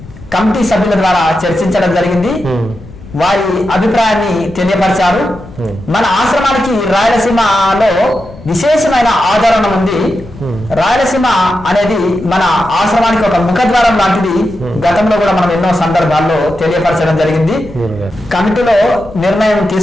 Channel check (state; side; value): noise; left; rumble, 18 dB below the sound